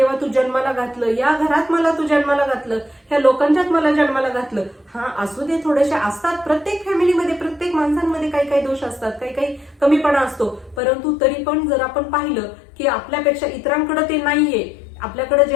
तू जन्माला घातलं, या घरात मला तू जन्माला घातलं, ह्या लोकांच्यात मला जन्माला घातलं. हा, असू दे, थोडेसे असतात प्रत्येक फॅमिलीमध्ये, प्रत्येक माणसांमध्ये काही दोष असतात, काही कमीपणा असतो. परंतु तरी पण जर आपण पाहिलं की आपल्यापेक्षा इतरांकडे ते नाहीये, आपल्याकडे जे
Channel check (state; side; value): drops out; right; at 10.8 s